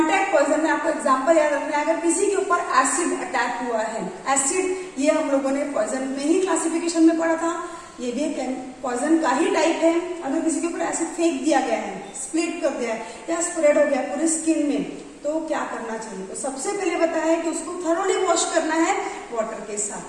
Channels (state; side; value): identical; both; correlation 1.00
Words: पॉइजन में आपको एग्जांपल याद रखना है, अगर किसी के ऊपर एसिड अटैक हुआ है, एसिड ये हम लोगों ने पॉइजन में ही क्लासिफिकेशन में पढ़ा था, ये भी पॉइजन का ही टाइप है। अगर किसी के ऊपर एसिड फेंक दिया गया है, स्प्लिट कर दिया है या स्प्रेड हो गया पूरी स्किन में, तो क्या करना चाहिए? तो सबसे पहले बताया है कि उसको थरोली वॉश करना है वाटर के